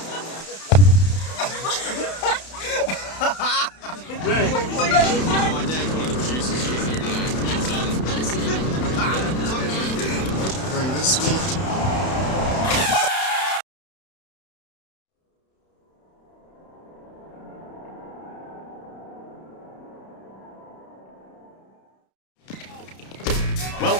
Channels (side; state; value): right; late; 31 ms